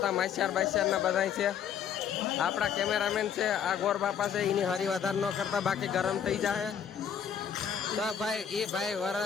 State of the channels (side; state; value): right; quieter; 8.2 dB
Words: માસ્યાર બાસ્યારના બધા છે. આપણા કેમેરામેન છે આ ગોર બાપા છે. એની હરી વધારે ન કરતા, બાકી ગરમ થઈ જાય. તો ભાઈ એ ભાઈ